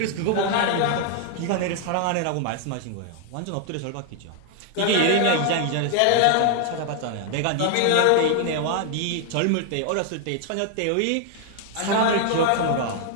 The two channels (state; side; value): different; both; correlation 0.00